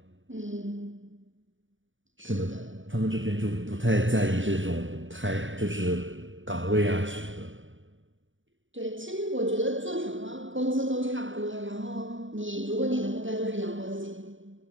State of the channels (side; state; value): left; late; 0.56 ms